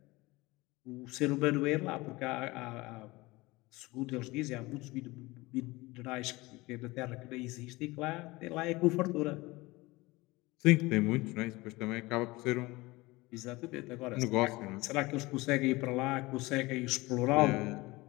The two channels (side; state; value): right; quieter; 21.6 dB